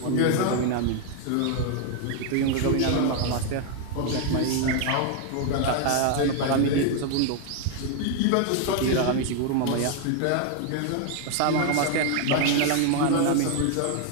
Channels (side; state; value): both; different; correlation 0.00